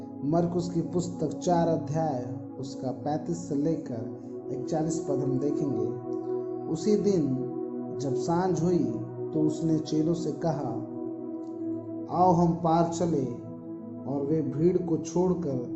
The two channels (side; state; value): both; identical; correlation 1.00